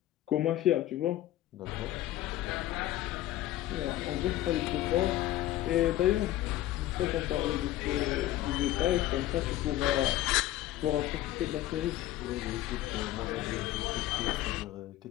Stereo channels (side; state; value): right; quieter; 14.5 dB